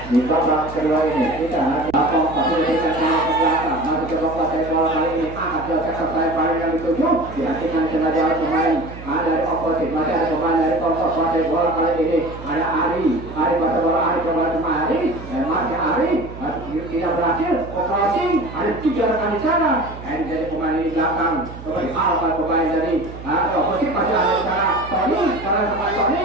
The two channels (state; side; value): noise; right; hum, 14 dB below the sound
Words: di babak kedua ini kita lapor pasir ke belakang masih coba pasir bola kali ini angkat ke sektor sayap yang dituju dihentikan sengaja oleh pemain dari oposisi masih ada pemain dari Koko pasir bola kali ini ada Ari pasir bola Ari coba cuma Ari dan masih Ari tidak berhasil crossing ada 3 rekan di sana dan jadi pemain di belakang coba dialihkan pemain dari oposisi masih ada di sana Tony karena pemain